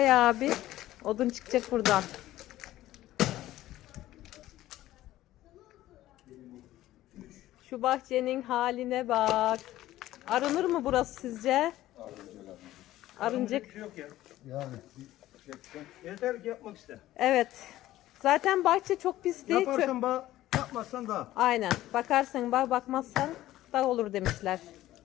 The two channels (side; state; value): right; quieter; 14.9 dB